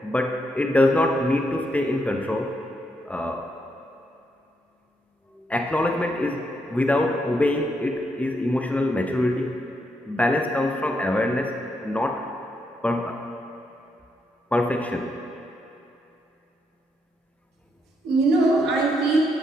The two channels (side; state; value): both; normal; correlation 0.78